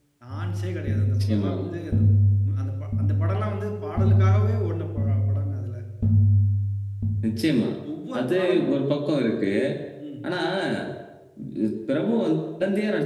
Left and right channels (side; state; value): both; identical; correlation 1.00